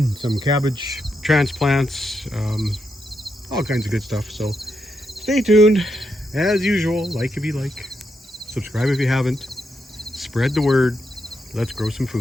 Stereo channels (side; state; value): both; normal; correlation 0.82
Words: some cabbage transplants, all kinds of good stuff. So stay tuned. As usual, like if you like, subscribe if you haven't, spread the word. Let's grow some